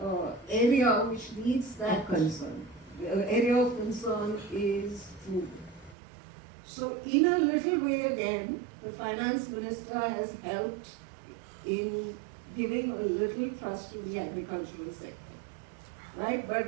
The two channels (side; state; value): left; drops out; at 6.0 s